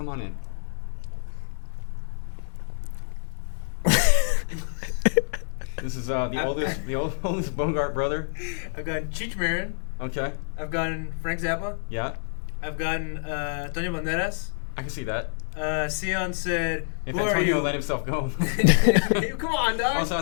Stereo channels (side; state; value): right; silent; digital silence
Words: on in. This is the oldest Bogart brother. I've gotten Cheech Marin. Okay. I've gotten Frank Zappa. Yeah. I've gotten Antonio Banderas. I can see that. Sion said, if Antonio let himself go. Come on, dog. Also, I